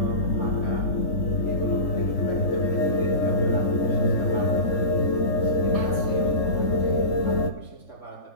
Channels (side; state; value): right; late; 3.8 ms